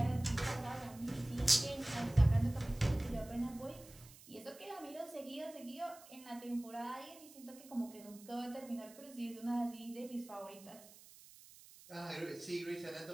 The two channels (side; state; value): right; noise; hiss, 20 dB below the sound